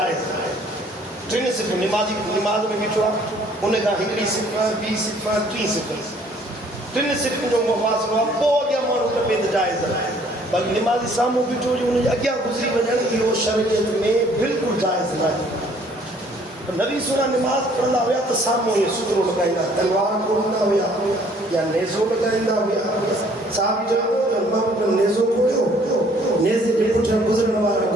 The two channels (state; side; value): normal; both; correlation 0.59